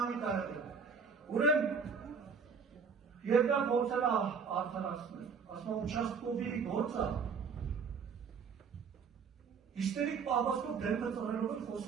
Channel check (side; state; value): left; quieter; 5.8 dB